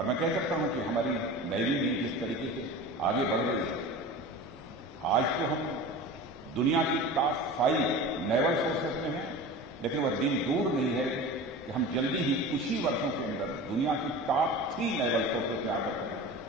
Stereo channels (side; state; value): both; normal; correlation 0.34